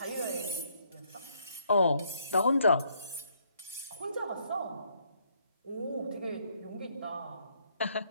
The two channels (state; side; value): inverted; both; correlation -0.69